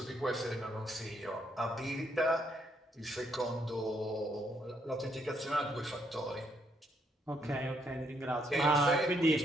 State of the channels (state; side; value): normal; both; correlation 0.73